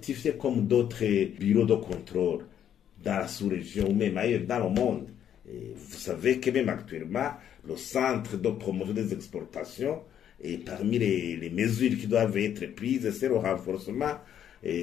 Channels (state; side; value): quieter; right; 9.7 dB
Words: comme d'autres bureaux de contrôle dans la sous-région ou même ailleurs dans le monde. Et vous savez que même actuellement, le centre de promotion des exportations, et parmi les mesures qui doivent être prises, c'est le renforcement